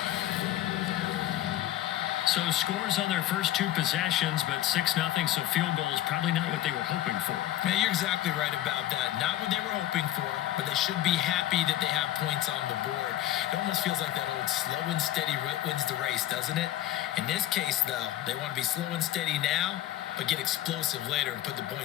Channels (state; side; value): quieter; right; 13.7 dB